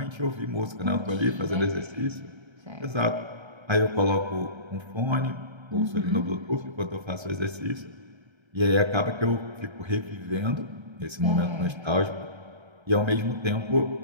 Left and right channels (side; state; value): left; late; 1.3 ms